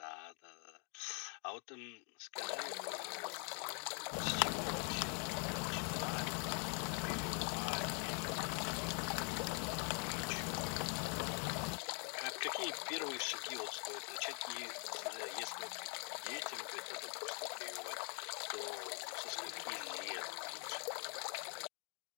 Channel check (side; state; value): right; quieter; 38.9 dB